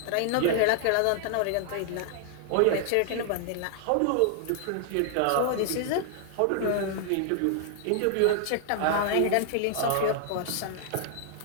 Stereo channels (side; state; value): both; different; correlation 0.00